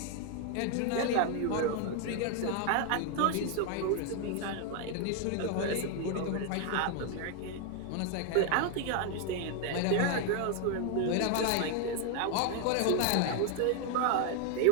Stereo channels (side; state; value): both; different; correlation 0.01